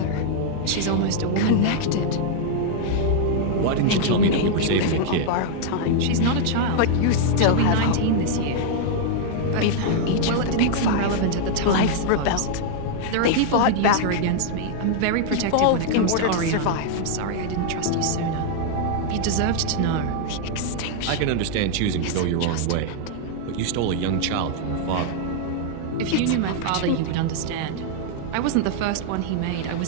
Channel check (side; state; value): both; different; correlation 0.00